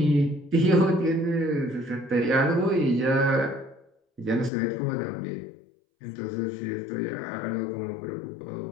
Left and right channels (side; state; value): right; drops out; at 4.5 s